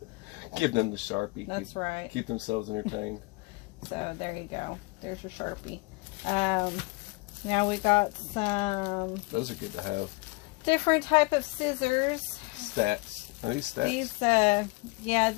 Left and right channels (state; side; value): quieter; right; 25.7 dB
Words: Give them the Sharpie. That's right. Keep themselves entertained. So there you go. There's your Sharpie. Now we got some. Those are good to have. Different type of scissors. Stats. Are these stats?